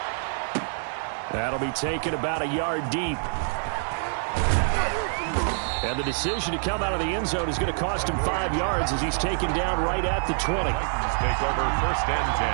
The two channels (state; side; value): silent; left; 61 dB below the other